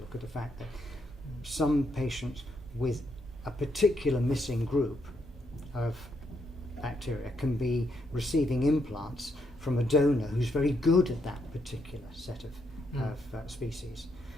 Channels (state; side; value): normal; both; correlation 0.78